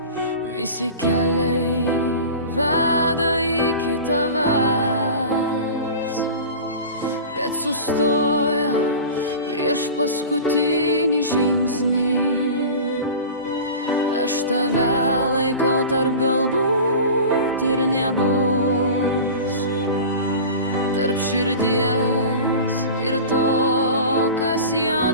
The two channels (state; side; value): inverted; both; correlation -0.34